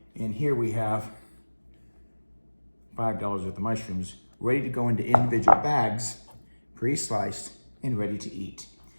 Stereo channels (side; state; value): both; inverted; correlation -1.00